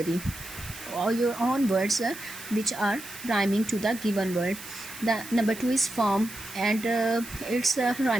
or your own words which are rhyming to the given word. The number 2 is farm, and its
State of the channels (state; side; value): noise; right; hiss, 13 dB below the sound